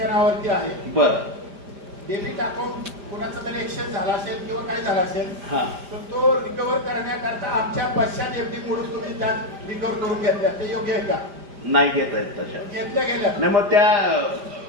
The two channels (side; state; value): left; late; 5.0 ms